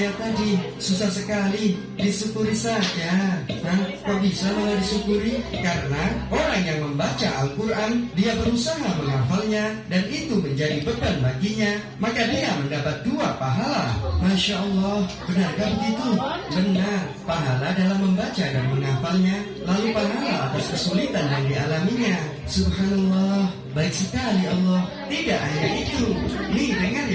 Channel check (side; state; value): both; identical; correlation 1.00